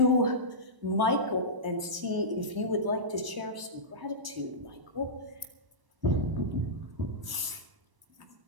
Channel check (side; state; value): left; late; 1.0 ms